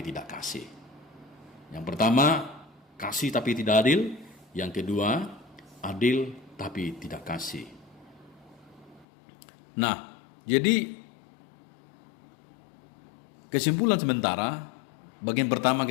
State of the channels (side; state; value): right; drops out; at 9.1 s